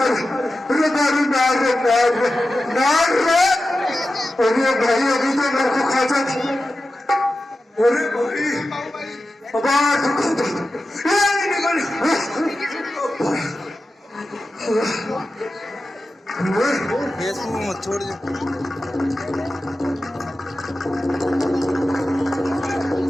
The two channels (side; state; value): both; normal; correlation 0.93